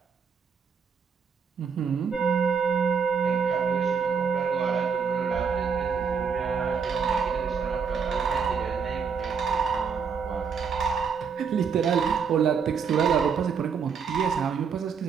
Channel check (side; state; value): left; quieter; 6.2 dB